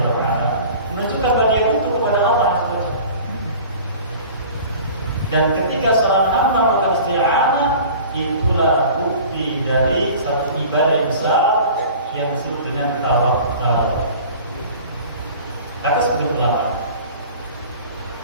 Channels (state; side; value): inverted; both; correlation -0.43